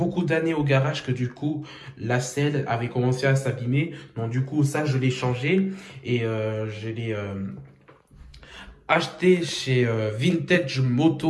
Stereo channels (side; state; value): both; identical; correlation 1.00